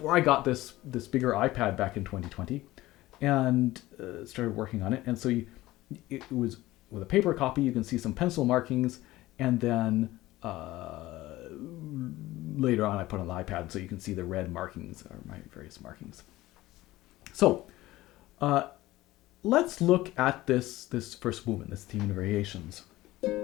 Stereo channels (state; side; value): quieter; right; 17.3 dB